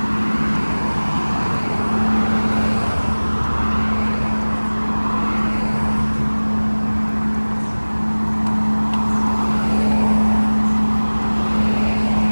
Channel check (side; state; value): both; inverted; correlation -1.00